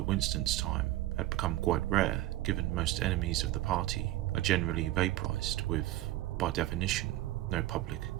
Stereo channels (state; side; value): quieter; left; 15.9 dB